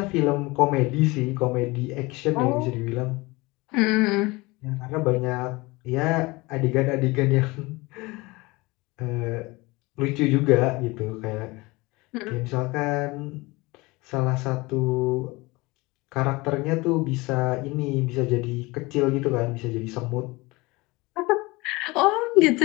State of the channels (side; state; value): right; quieter; 23.2 dB